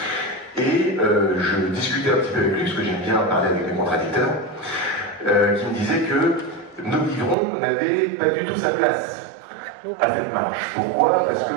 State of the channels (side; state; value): left; drops out; at 7.4 s